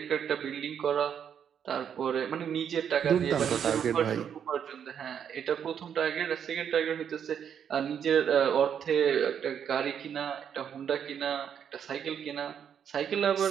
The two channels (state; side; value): quieter; left; 8.3 dB